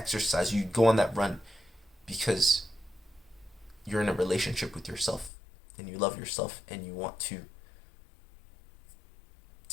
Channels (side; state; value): right; drops out; at 5.3 s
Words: you go on that run because you're in a relationship with yourself and you love yourself and you want to